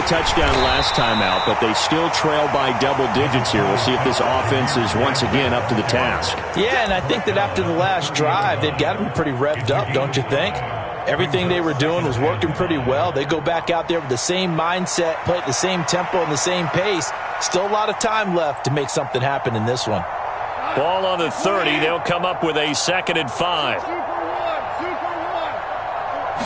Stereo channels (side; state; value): both; identical; correlation 1.00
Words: touchdown last time out, but they still trail by double digits here. We'll see if this offense is once again up to the task. Yeah, and I think that after the last drive, they've got to be pretty revved up, don't you think? Everything they were doing was working pretty well. They go back out there with the same mindset, play at the same tempo and the same pace. Still a lot of time left to make something happen in this one. Ball on the 30. They'll come up with a 2nd and 5.